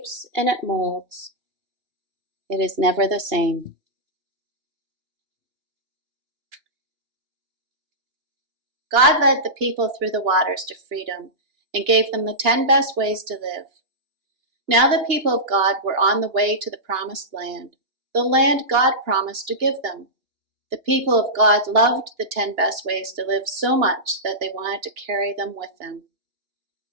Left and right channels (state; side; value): late; left; 2.9 ms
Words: and it molds. It is never the same. God led the people through the waters to freedom and gave them the 10 best ways to live. Now the people of God were on the way to the promised land, the land God promised to give them. The people of God loved the 10 best ways to live so much that they wanted to carry them with them.